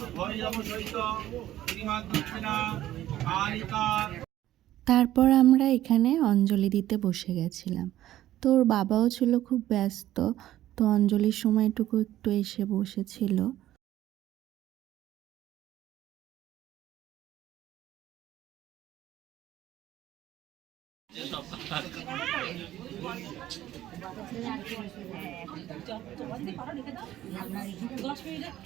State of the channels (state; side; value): quieter; left; 13.5 dB